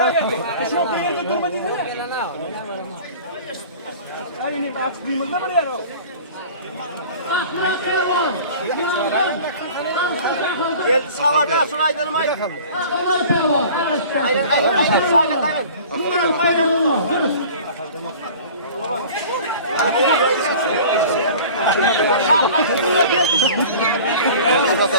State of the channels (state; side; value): inverted; both; correlation -0.43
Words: Çok yerde durma dedin. Ay ne bak kıyımızda mı ya o? Gel sağda şurayı dönmeyin. Aynen sağda aynen.